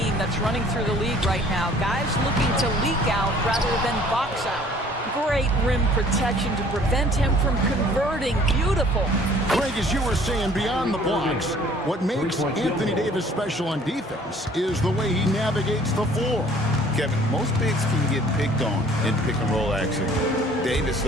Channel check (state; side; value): normal; both; correlation 0.54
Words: that's running through the league right now. Guys looking to leak out rather than box out. Great rim protection to prevent him from converting. Beautiful. Greg, as you were saying, beyond the blocks, what makes Anthony Davis special on defense is the way he navigates the floor. Kevin, most bigs can get picked on in pick-and-roll action. Davis,